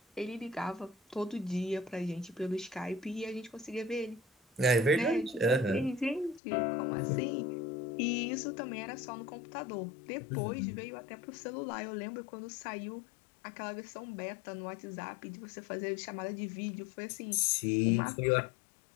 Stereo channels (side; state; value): right; drops out; at 6.4 s